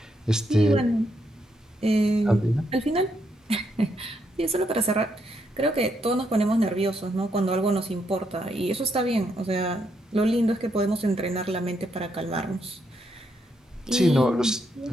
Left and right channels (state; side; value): normal; both; correlation 0.77